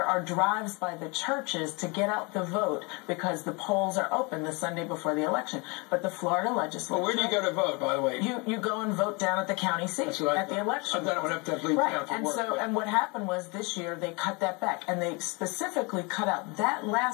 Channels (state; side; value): quieter; right; 29.2 dB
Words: are drives by the churches to get out the vote because the polls are open the Sunday before the election. But the Florida legislature... Well, where do you go to vote, by the way? You go and vote down at the county seat at the election. I've done it when I have to leave town for work. And what happened was this year they cut that back, and they specifically cut out that